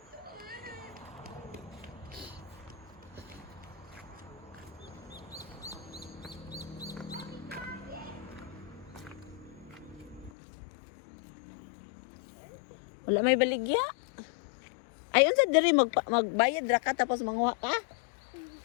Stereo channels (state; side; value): drops out; right; at 10.3 s